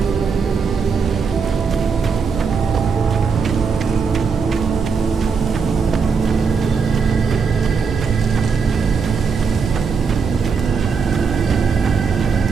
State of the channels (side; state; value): left; quieter; 5.5 dB